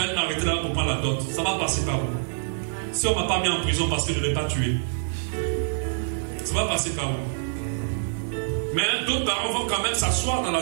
m'arrêter là pour prendre la dot. Ça va passer par où? Si on ne m'a pas mis en prison parce que je ne l'ai pas tué, ça va passer par où? Mais d'autres parents vont quand même s'asseoir dans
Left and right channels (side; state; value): left; silent; digital silence